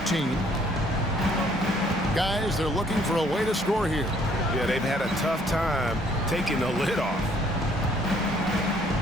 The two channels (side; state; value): both; normal; correlation 0.63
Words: Guys, they're looking for a way to score here. Yeah, they've had a tough time taking the lid off.